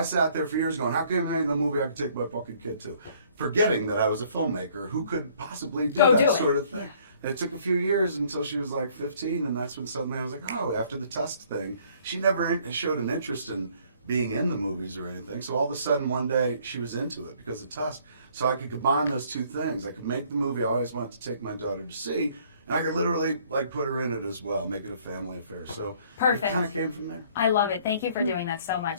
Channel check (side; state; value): both; inverted; correlation -0.60